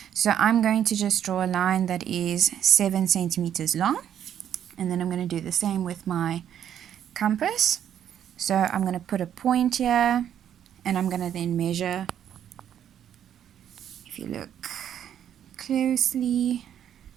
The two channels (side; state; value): left; quieter; 9.8 dB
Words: So I'm going to just draw a line that is 7 centimeters long. And then I'm going to do the same with my compass. So I'm going to put a point here, and I'm going to then measure. If you look closely,